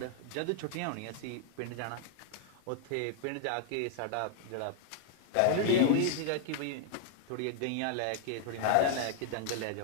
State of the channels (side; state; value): both; different; correlation -0.01